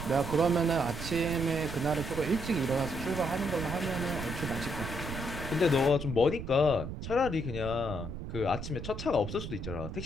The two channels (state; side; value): noise; right; rumble, 7 dB below the sound